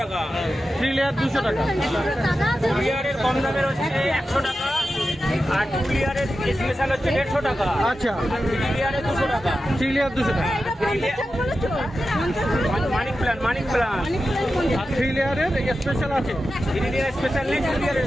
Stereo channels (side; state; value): both; normal; correlation 0.92